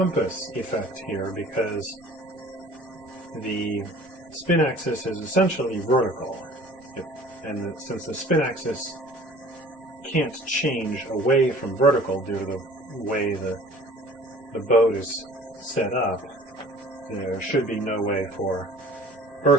effect here because the spin axis is essentially vertical, and since the spin axis can't change away from vertical due to the way the boat is set up, there should be no way for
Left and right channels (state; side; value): normal; both; correlation 0.48